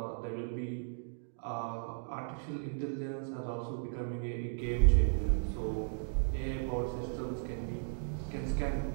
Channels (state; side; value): silent; left; digital silence